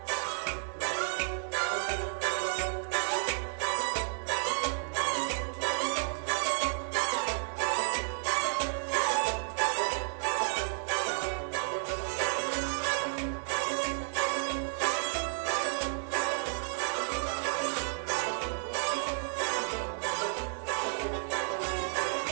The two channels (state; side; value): silent; left; 56 dB below the other